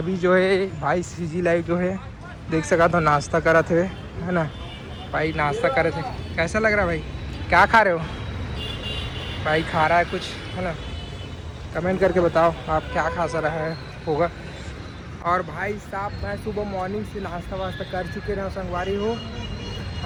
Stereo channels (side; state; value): both; identical; correlation 1.00